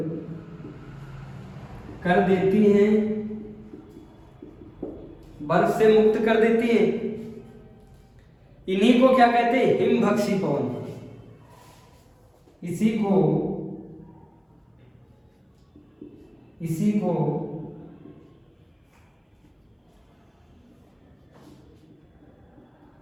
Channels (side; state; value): both; identical; correlation 1.00